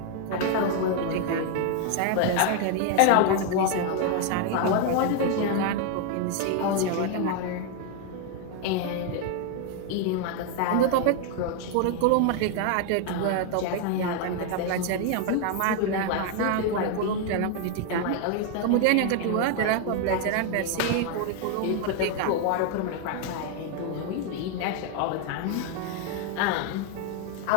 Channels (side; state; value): both; different; correlation 0.00